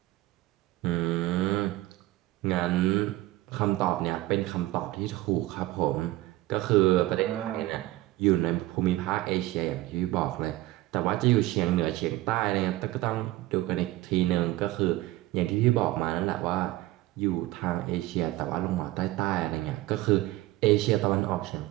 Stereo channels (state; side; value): quieter; left; 17.5 dB